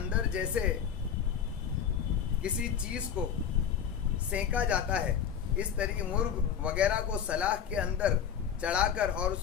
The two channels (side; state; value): right; quieter; 8.1 dB